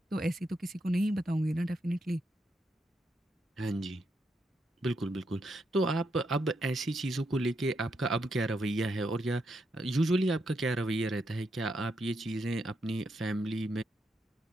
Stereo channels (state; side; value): normal; both; correlation 0.81